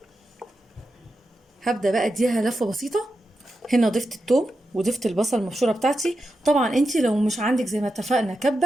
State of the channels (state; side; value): normal; both; correlation 0.89